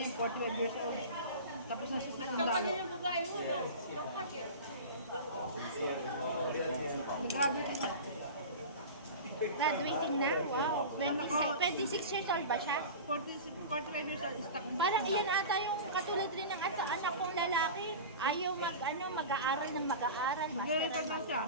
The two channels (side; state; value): both; inverted; correlation -0.31